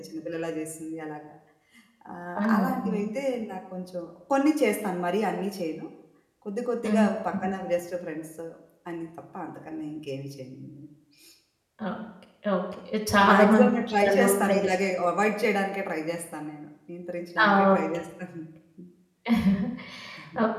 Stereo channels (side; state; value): both; identical; correlation 1.00